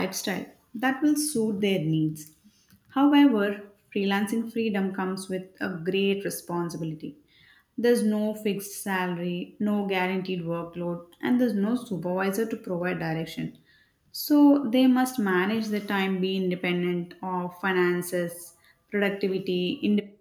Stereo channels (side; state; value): both; identical; correlation 1.00